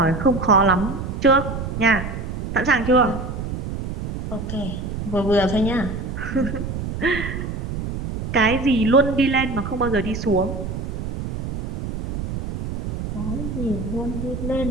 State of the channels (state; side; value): noise; right; rumble, 6 dB below the sound